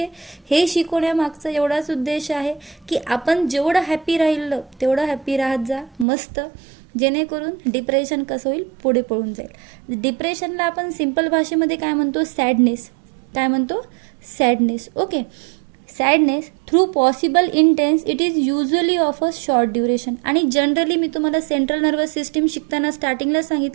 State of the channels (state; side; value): drops out; left; at 6.1 s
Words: हे शिकवण्यामागचा एवढाच उद्देश आहे की आपण जेवढं हॅपी राहिलं तेवढं हॅपी राहत जा, मस्त, जेणेकरून डिप्रेशन कसं होईल, पुढे पळून जाईल. डिप्रेशनला आपण सिंपल भाषेमध्ये काय म्हणतो, सॅडनेस. काय म्हणतो, sadness. Okay, sadness through possible intense, it is usually of a short duration. आणि जनरली मी तुम्हाला सेंट्रल नर्वस सिस्टीम शिकताना स्टार्टिंगला